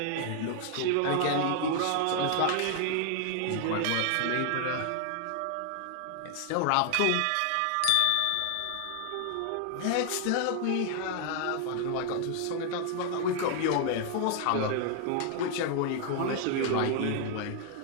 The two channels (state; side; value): different; both; correlation 0.00